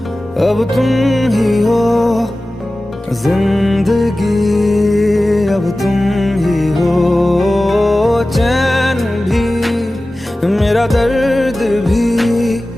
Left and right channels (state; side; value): normal; both; correlation 0.96